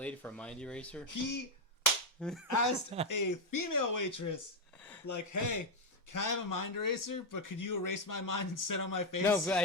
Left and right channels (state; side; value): normal; both; correlation 0.04